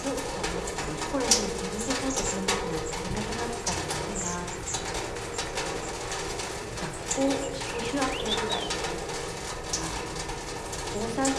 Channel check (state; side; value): identical; both; correlation 1.00